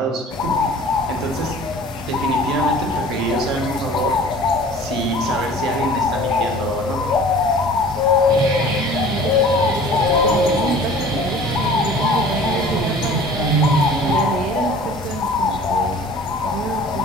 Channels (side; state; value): both; normal; correlation 0.46